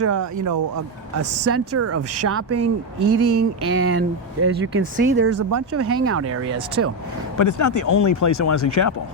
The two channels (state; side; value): normal; both; correlation 0.08